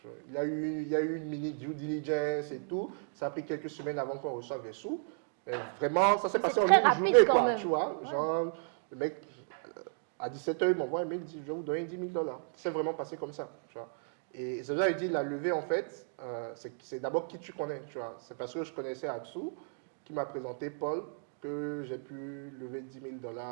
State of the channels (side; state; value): left; silent; digital silence